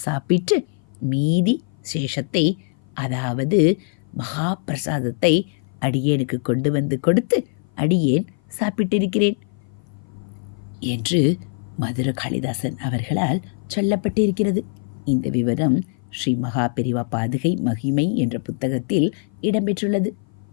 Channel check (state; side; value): silent; right; 56 dB below the other